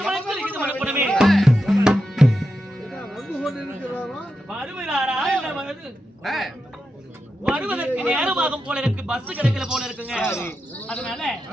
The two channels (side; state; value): both; normal; correlation 0.88